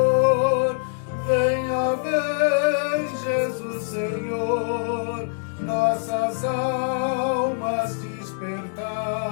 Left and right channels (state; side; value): silent; right; digital silence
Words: Venha, vem, Jesus Senhor, nossas almas